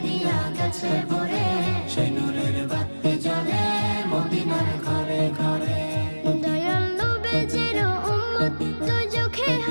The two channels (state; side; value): inverted; both; correlation -1.00